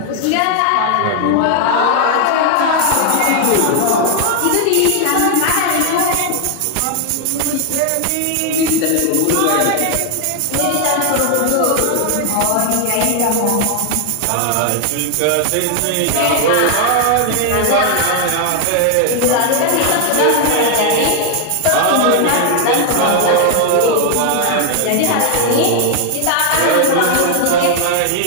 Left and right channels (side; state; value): both; different; correlation 0.00